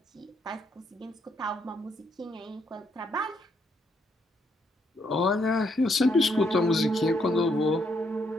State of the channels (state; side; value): normal; both; correlation 0.74